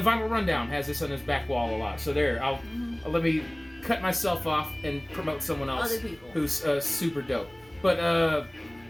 Vinyl Rundown has this on his back wall a lot. So there, I'll let me cut myself off and promote someone else who's super dope. But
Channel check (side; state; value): right; noise; rumble, 27 dB below the sound